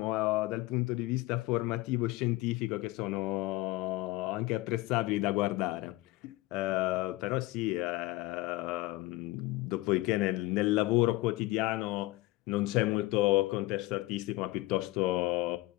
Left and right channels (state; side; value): quieter; right; 19.6 dB